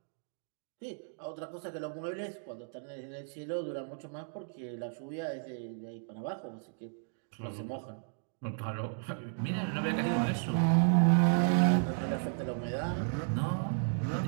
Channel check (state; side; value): silent; left; digital silence